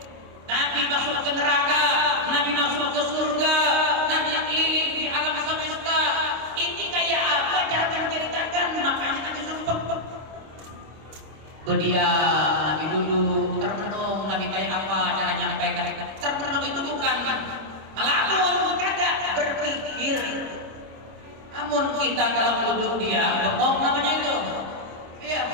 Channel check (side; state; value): left; late; 26 ms